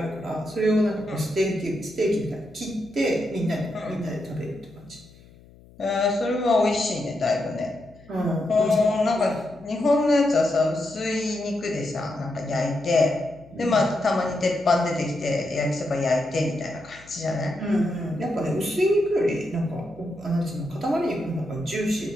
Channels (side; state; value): left; noise; hum, 24 dB below the sound